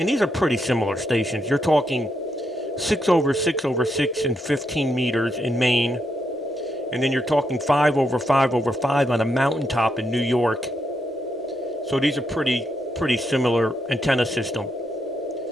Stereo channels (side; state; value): both; normal; correlation 0.80